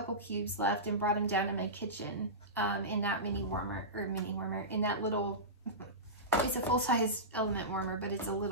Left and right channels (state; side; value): normal; both; correlation -0.17